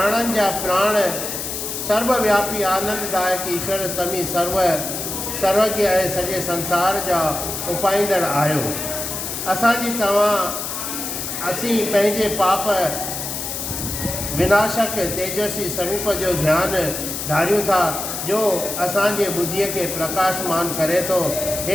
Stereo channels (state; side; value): noise; left; hiss, 5 dB below the sound